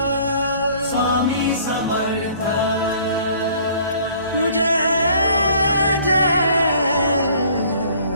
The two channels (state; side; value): inverted; both; correlation -0.55